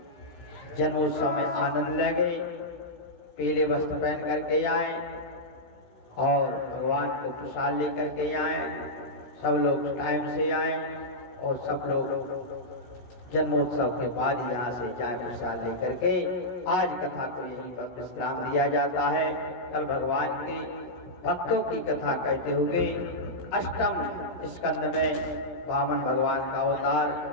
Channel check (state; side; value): late; right; 16 ms